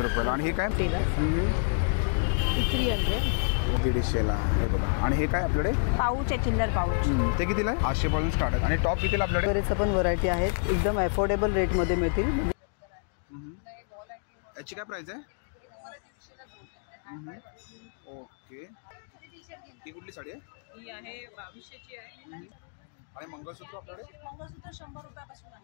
रुपयाला आणि हे काय? 300 150ला हे बघा। आणि हे काय आपल्याकडे? पाऊच आहे, चिल्लर पाऊच। ते कितीला आहे? 800 पासून स्टार्ट आहे आणि टॉप कितीला आपल्याकडे? बरेच पण व्हरायटी आहेत, एकदम अफोर्डेबल रेटमध्ये मिळतील। याची काय प्राइस आहे? ओके, ही कुठली साडी आहे? ही आहे 2200ची आहे आणि मंगळसूत्र आपल्याकडे? मंगळसूत्र 100 रुपयापासून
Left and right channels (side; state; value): right; silent; digital silence